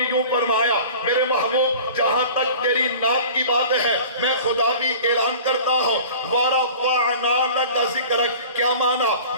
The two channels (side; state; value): both; inverted; correlation -0.42